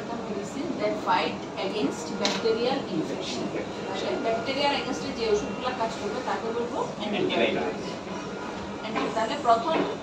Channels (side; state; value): both; identical; correlation 1.00